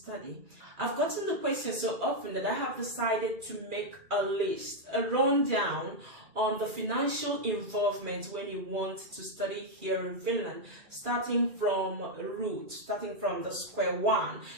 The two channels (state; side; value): late; left; 2.4 ms